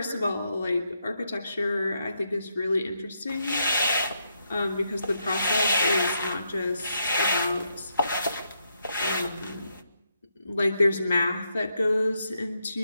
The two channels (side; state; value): both; inverted; correlation -0.80